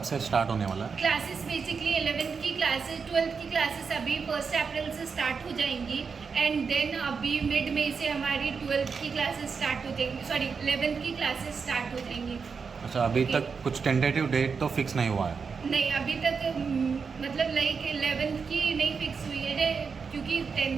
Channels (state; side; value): quieter; left; 5.5 dB